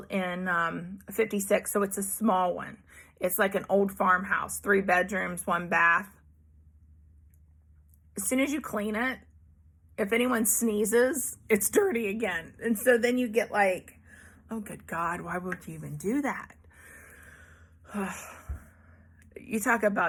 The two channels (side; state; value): both; identical; correlation 1.00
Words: in 56, so it's a small one. It's like an old farmhouse, 3 bedrooms, 1 bath. As soon as you clean it, if anyone sneezes, it's dirty again. And so then you get like, oh, good God, why would you even do that? You talk